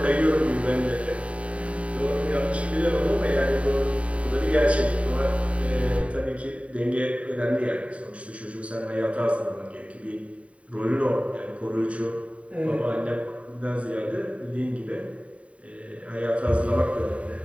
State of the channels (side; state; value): left; late; 0.065 ms